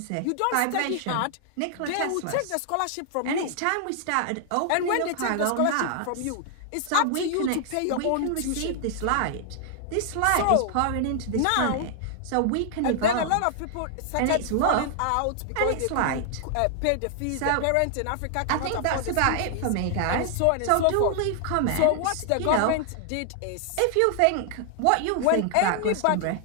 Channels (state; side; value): different; both; correlation 0.00